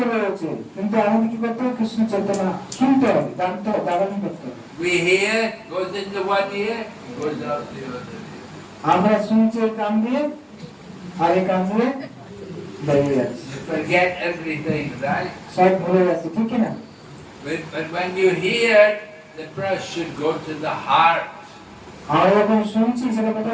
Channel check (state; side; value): identical; both; correlation 1.00